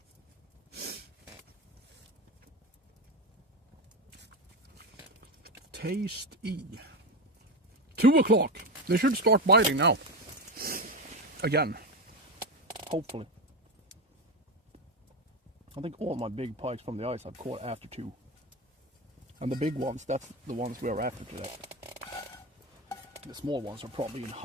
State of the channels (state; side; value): normal; both; correlation 0.16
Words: Tasty. 2 o'clock. They should start biting now. Again. Hopefully. I think all my big pikes from the ice I've caught after 2. And the big ones, that's the ones we are after today. The small ones are probably in